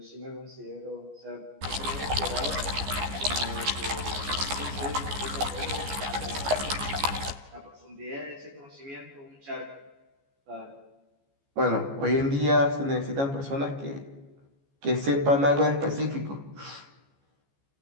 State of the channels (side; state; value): left; late; 14 ms